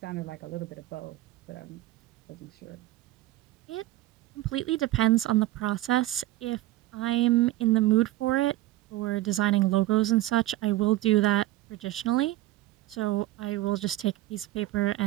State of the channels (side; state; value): left; quieter; 16.4 dB